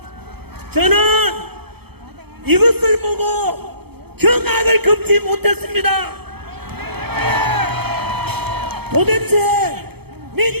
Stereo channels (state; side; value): late; left; 0.97 ms